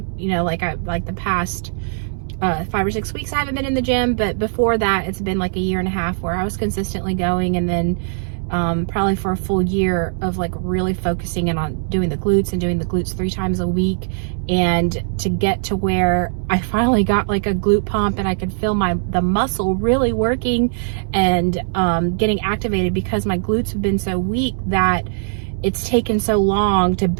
Like the past 5 or 6 weeks I haven't been in the gym, but before that it's been like a year and a half where I was consistently going, and then probably for a full year of like really focusing in on doing the glutes and doing the glutes 3 times a week, and to get to where I finally got like a glute pump and I could feel the muscle really working and getting activated, because my glutes have been so weak that it's taken so long to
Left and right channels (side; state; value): left; silent; digital silence